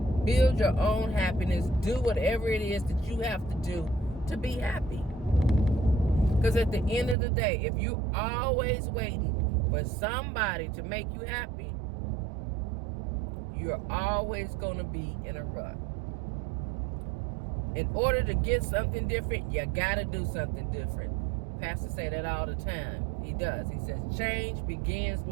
Build your own happiness. Do whatever it is that you have to do to be happy. Because at the end of the day, if you're always waiting for somebody to make you happy, you're always going to be in a rut. In order to get something different, you got to do something different. Pastor say that all the time. He does. He says, change begins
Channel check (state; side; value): drops out; left; at 7.2 s